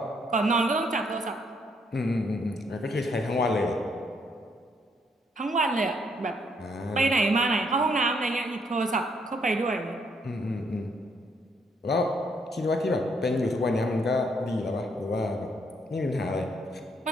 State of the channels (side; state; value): both; normal; correlation 0.71